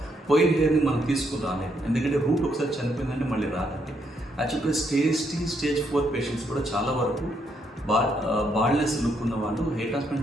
పోయిన హెయిర్ని మనం తీసుకుని రాలేదు. ఎందుకంటే రూట్ ఒకసారి చనిపోయిందంటే మళ్ళీ రాదండి. యాక్చువల్గా స్టేజ్ 4 పేషెంట్స్ కూడా చాలా వరకు బాల్నెస్ లుక్ ఉన్న వాళ్ళు హెయిర్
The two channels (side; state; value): both; normal; correlation 0.75